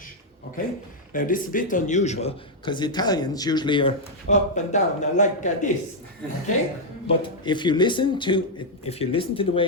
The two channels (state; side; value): normal; both; correlation -0.02